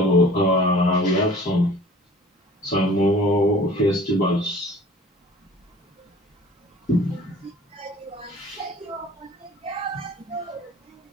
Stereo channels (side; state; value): both; normal; correlation 0.47